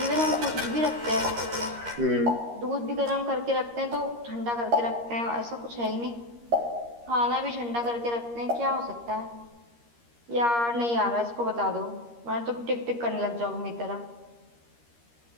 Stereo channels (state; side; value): late; left; 13 ms